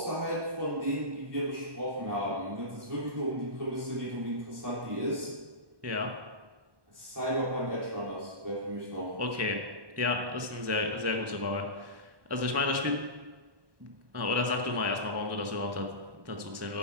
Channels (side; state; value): left; late; 1.2 ms